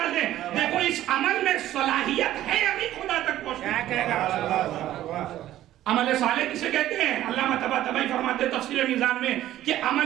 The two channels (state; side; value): quieter; left; 13.5 dB